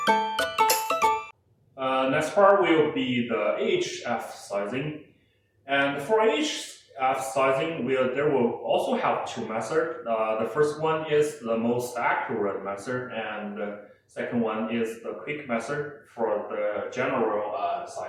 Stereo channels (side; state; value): both; identical; correlation 1.00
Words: Next part will be the AHF sizing. And for AHF sizing, there will also have two methods. The first one is the most accurate method, and the second one is the quick method for the general